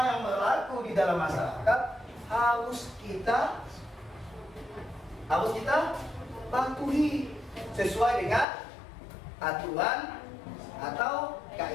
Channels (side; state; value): right; drops out; at 8.5 s